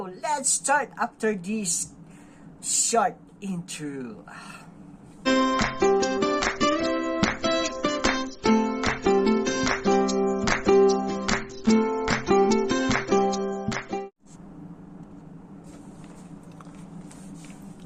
let's start after this short intro.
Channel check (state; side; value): identical; both; correlation 1.00